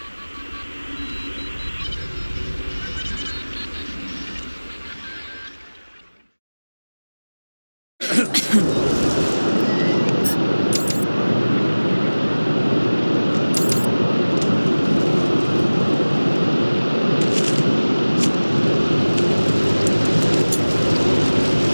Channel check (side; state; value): both; inverted; correlation -1.00